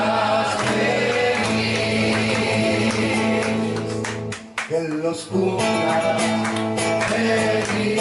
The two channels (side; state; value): both; identical; correlation 1.00